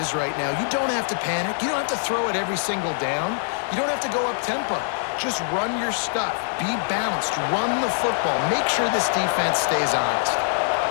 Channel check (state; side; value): silent; right; 63 dB below the other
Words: right now. You don't have to panic. You don't have to throw it every single down. You don't have to go up tempo. Just run your stuff. Be balanced. Run the football. Make sure this defense stays honest.